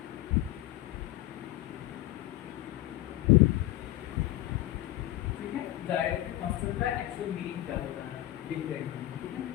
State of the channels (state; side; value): quieter; right; 15.8 dB